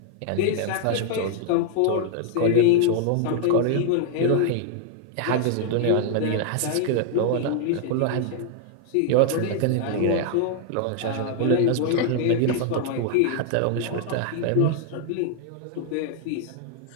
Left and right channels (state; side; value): different; both; correlation 0.00